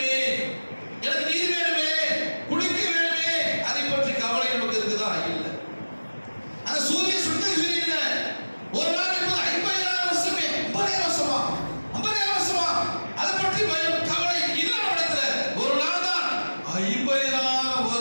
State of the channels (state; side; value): inverted; both; correlation -1.00